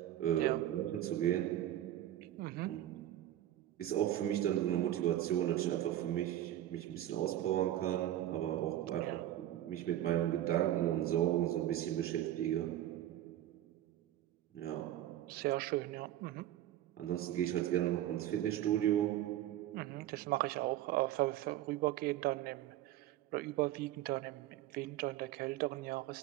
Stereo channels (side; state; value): left; quieter; 13.0 dB